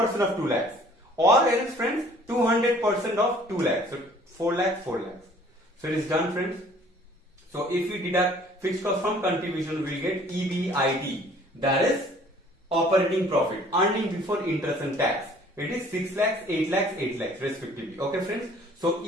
of 2 lakhs, or else friends 200% of 2 lakhs. So 4 lakhs, 4 lakhs. So it is done, friends. So if we deduct fixed cost from contribution, we will get EBIT, that is operating profit, earning before interest and tax. It is 6 lakhs, 8 lakhs, 8 lakhs respectively. Okay friends. So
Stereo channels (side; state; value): both; normal; correlation 0.54